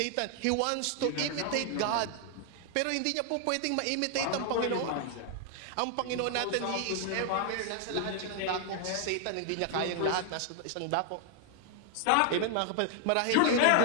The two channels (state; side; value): different; both; correlation 0.00